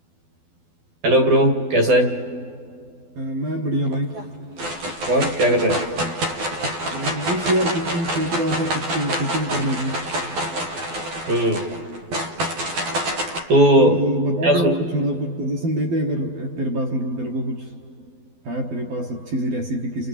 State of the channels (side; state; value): left; late; 12 ms